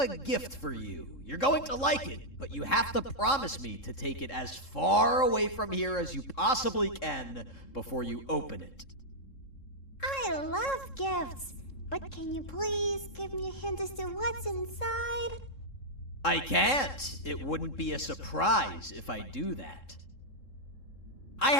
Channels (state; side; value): late; right; 3.7 ms